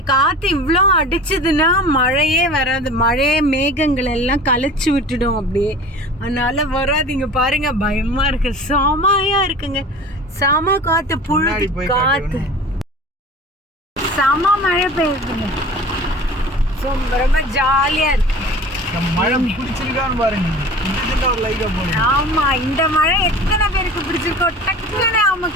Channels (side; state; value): both; normal; correlation 0.40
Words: காற்று இவ்வளோ அடிச்சதுன்னா மழையே வராது, மழையே மேகங்கள் எல்லாம் கலைச்சி விட்டுடும் அப்படியே. அதனால வராதிங்க பாருங்க, பயமா இருக்கு, செமையா இருக்குங்க, செம காற்று, புழுதி காற்று, செம மழை பெய்யுதுங்க. ரொம்ப ஜாலியா இருக்கு. ஆமா, இந்த மழை எத்தனை பேருக்கு பிடிச்சிருக்கோ டக்குன்னு